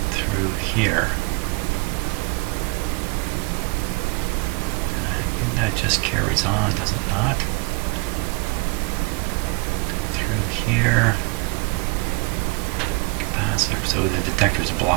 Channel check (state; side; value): quieter; left; 28.0 dB